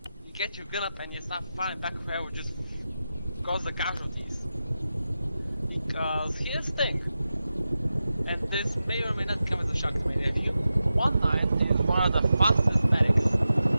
You get your gun up and you start firing back whoever just cause the casualties. Because here's the thing, and this may or may not come as a shock to many of you, 1-9 is one of the fastest medics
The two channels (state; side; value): inverted; both; correlation -0.92